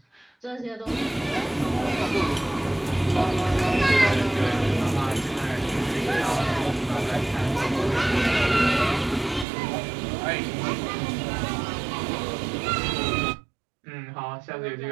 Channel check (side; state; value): left; drops out; at 9.5 s